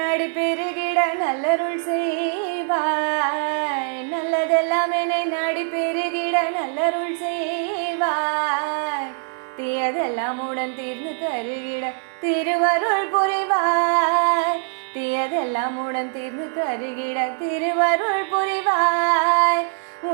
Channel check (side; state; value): left; silent; 64 dB below the other